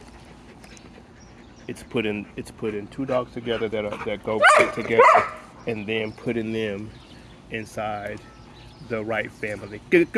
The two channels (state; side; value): identical; both; correlation 1.00